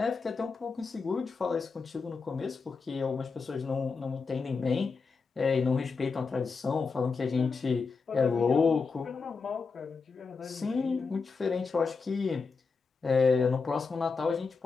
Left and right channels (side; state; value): right; quieter; 4.7 dB